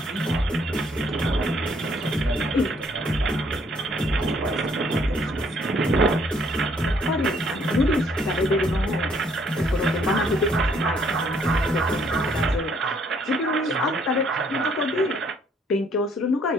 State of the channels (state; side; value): normal; both; correlation 0.66